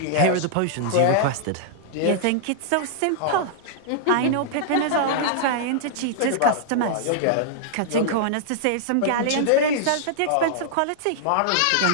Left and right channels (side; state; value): both; different; correlation -0.01